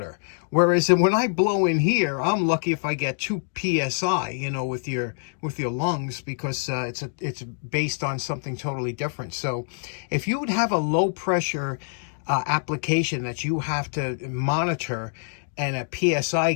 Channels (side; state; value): right; silent; digital silence